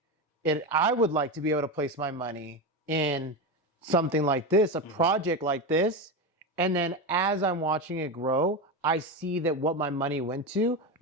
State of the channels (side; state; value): both; normal; correlation 0.17